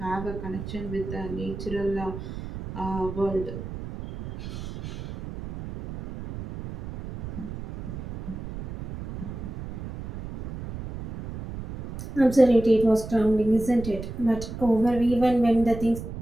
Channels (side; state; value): right; noise; rumble, 9 dB below the sound